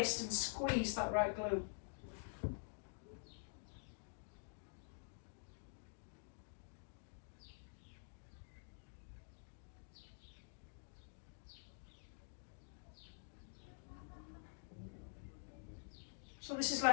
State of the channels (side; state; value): right; silent; digital silence